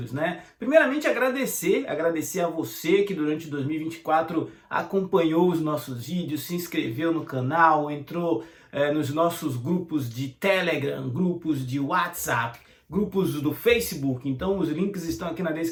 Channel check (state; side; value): identical; both; correlation 1.00